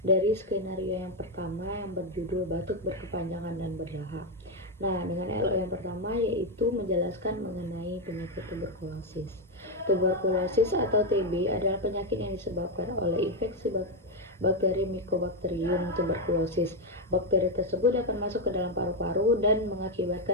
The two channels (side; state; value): both; normal; correlation 0.05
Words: dari skenario yang pertama yang berjudul batuk berkepanjangan dan berdahak. Nah, dengan LO yang pertama yaitu menjelaskan mengenai penyakit tuberkulosis. Tuberkulosis atau TB adalah penyakit yang disebabkan oleh infeksi bakteri Mycobacterium tuberculosis. Bakteri tersebut dapat masuk ke dalam paru-paru dan